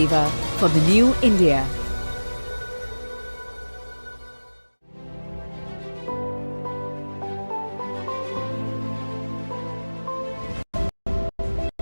for the new India.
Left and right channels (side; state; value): both; inverted; correlation -1.00